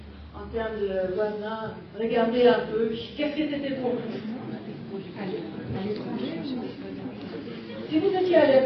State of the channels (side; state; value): both; identical; correlation 1.00